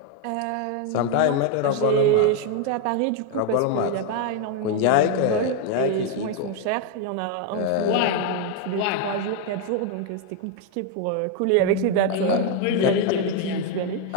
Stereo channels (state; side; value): different; both; correlation 0.01